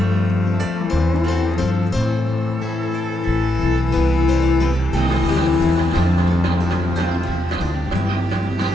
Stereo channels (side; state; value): both; normal; correlation 0.81